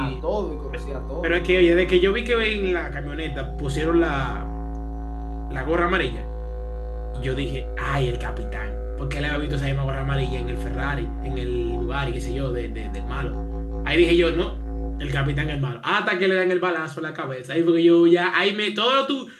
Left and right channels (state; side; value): identical; both; correlation 1.00